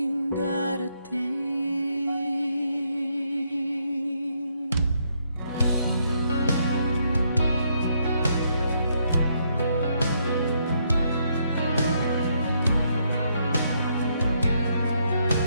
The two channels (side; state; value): both; inverted; correlation -0.74